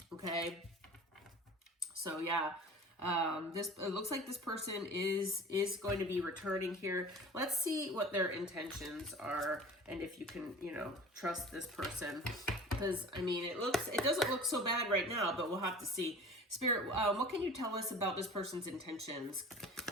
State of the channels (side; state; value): both; normal; correlation 0.41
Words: Okay. So yeah, it looks like this person is going to be returning here. Let's see what their intentions are, and if you can, trust this person, because it doesn't look so bad right now, but we'll have to see. Spirit, what can you tell us about this person's intentions?